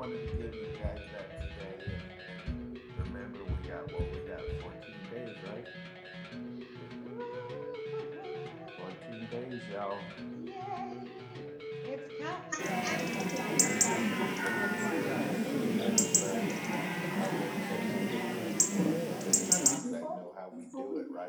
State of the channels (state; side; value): identical; both; correlation 1.00